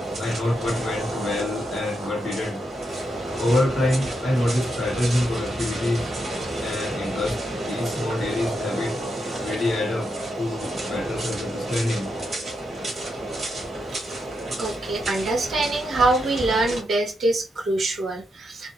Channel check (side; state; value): both; normal; correlation 0.83